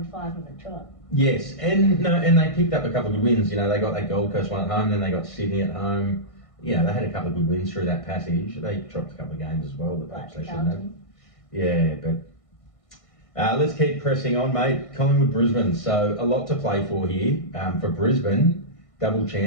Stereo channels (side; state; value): right; late; 1.6 ms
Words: 5 on the trot. Yes, and they picked up a couple of good wins. They got that Gold Coast one at home, then they got Sydney at home. They had a couple of good wins through that passage. They dropped a couple of games as well that perhaps they shouldn't have. Yeah, but let's keep pressing on, mate. Collingwood, Brisbane. So a lot to play for here. For Brisbane, double